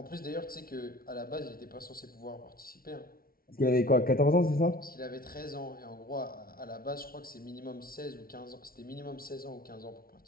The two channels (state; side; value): late; right; 0.43 ms